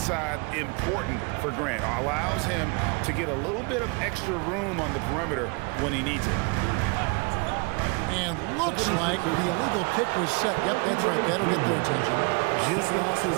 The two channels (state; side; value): quieter; left; 30.8 dB